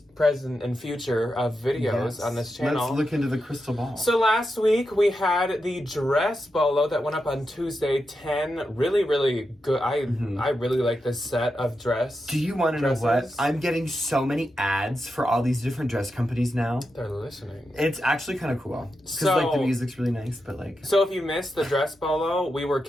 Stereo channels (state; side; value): normal; both; correlation 0.88